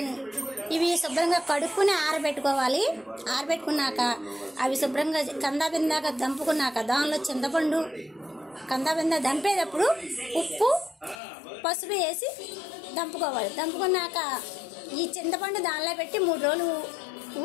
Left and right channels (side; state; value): right; drops out; at 11.2 s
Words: ఇవి శుభ్రంగా కడుక్కుని ఆరబెట్టుకోవాలి. ఆరబెట్టుకున్నాక అవి శుభ్రంగా కందాబిందాక దంపుకున్నాక దానిలో చింతపండు కందాబిందా దంపేటప్పుడు ఉప్పు పసుపు వేసి దంపుకోవాలి. దంపుకున్నాక ఈ చింతపండు దానిలో పెట్టి 3 రోజులు